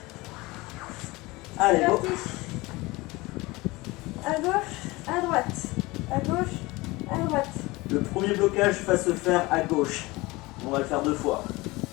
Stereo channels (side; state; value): right; quieter; 21.9 dB